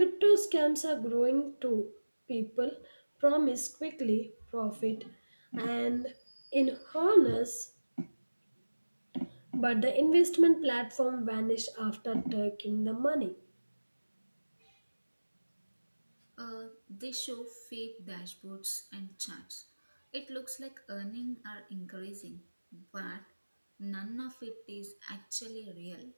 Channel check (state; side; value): inverted; both; correlation -1.00